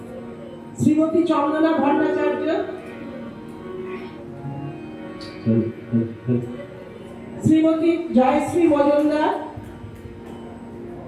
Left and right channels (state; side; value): identical; both; correlation 1.00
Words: শ্রীমতী চন্দনা ভট্টাচার্য, শ্রীমতী জয়শ্রী মজুমদার,